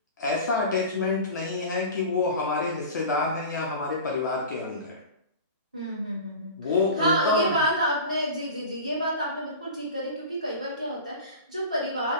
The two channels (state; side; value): inverted; both; correlation -0.34